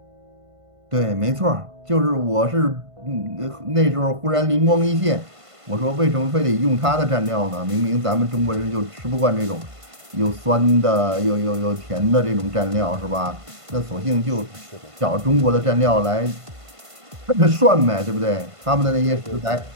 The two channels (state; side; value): late; left; 1.5 ms